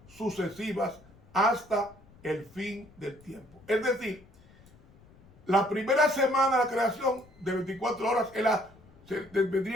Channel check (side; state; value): left; noise; rumble, 26 dB below the sound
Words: sucesivas hasta el fin del tiempo. Es decir, la primera semana de la creación de 24 horas